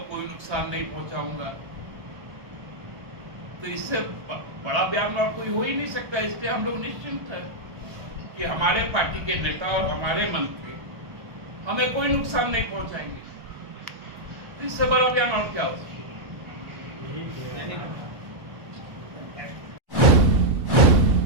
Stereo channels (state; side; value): late; left; 1.3 ms